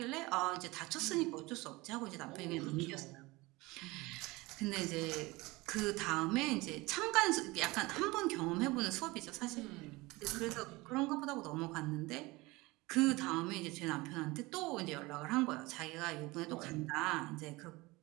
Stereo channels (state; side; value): quieter; left; 22.2 dB